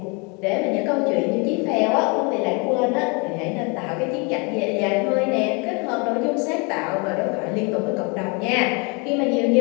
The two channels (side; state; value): right; quieter; 31.7 dB